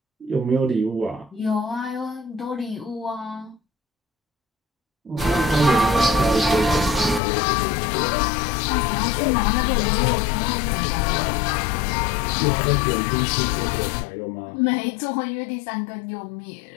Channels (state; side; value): drops out; right; at 7.2 s